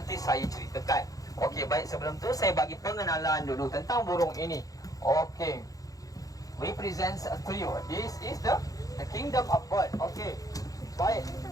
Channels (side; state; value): right; late; 0.17 ms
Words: saya ceritakan. Okey, baik, sebelum tu saya bagi pengenalan dulu tentang burung ini. Okey, represents a trio. This is the kingdom of bird. Okey, baik.